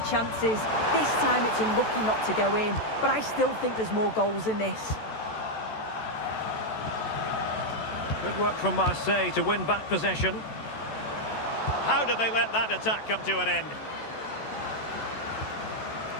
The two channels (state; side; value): late; right; 14 ms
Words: chances. This time it's unlucky not to go in, but I still think there's more goals in this. Good work from Marseille to win back possession. How did they let that attack come to an end?